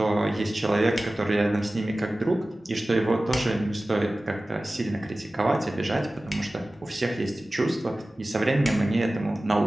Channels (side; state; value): both; normal; correlation 0.97